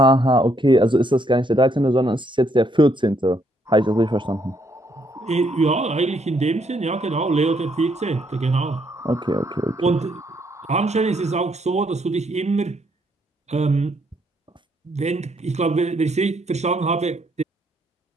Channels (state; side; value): normal; both; correlation 0.72